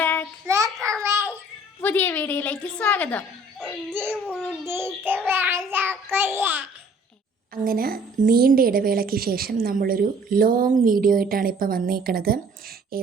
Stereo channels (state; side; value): normal; both; correlation 0.55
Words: പുതിയ വീഡിയോയിലേക്ക് സ്വാഗതം. അങ്ങനെ നീണ്ട ഇടവേളയ്ക്ക് ശേഷം നമ്മളൊരു ലോങ് വീഡിയോ ആയിട്ടാണ് ഇപ്പോൾ വന്നേക്കണത്.